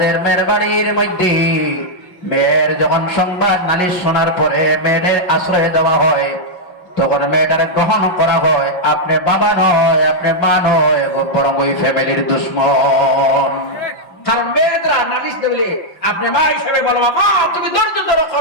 মেয়ের বাড়ির মধ্যে মেয়ের যখন সংবাদ নালিশ শোনার পরে মেয়েদের আশ্রয় দেওয়া হয়, তখন মেয়েটারে গ্রহণ করা হয়, আপনি বাবা নয়, আপনি মা নয়, বরং ওই ফ্যামিলির দুশ্মন। কারণ মেয়েরা নালিশ দেবে, আপনি মা হিসেবে বলো মা তুমি ধৈর্য ধরো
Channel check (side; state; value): right; late; 5.5 ms